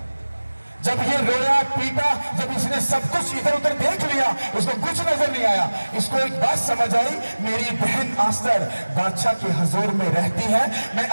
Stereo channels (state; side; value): inverted; both; correlation -1.00